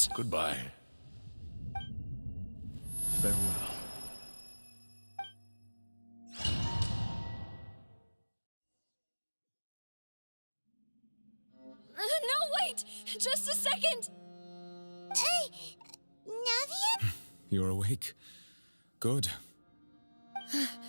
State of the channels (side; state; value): both; inverted; correlation -1.00